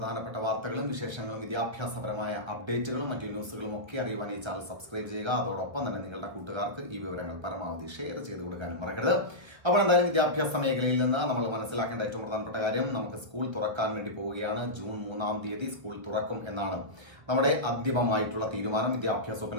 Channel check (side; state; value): left; late; 1.5 ms